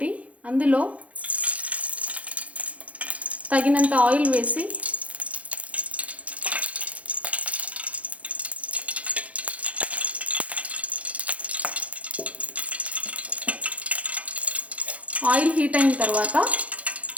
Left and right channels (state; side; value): late; left; 0.066 ms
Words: అందులో తగినంత ఆయిల్ వేసి ఆయిల్ హీట్ అయిన తర్వాత